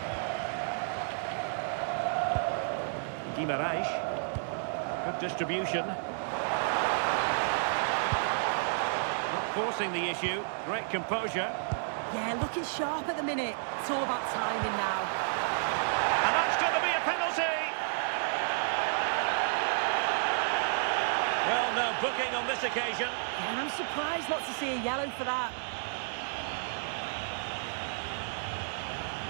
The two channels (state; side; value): silent; left; digital silence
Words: Guimarães, good distribution. Not forcing the issue, great composure. Yeah, looking sharp at the minute. It's all about timing now. And that's going to be a penalty. Well, no booking on this occasion. And I'm surprised not to see a yellow for that.